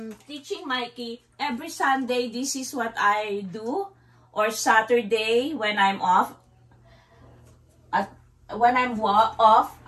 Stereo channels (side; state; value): both; identical; correlation 1.00